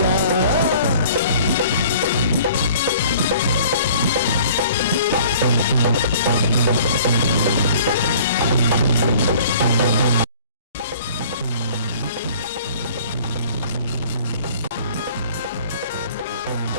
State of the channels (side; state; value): both; inverted; correlation -0.51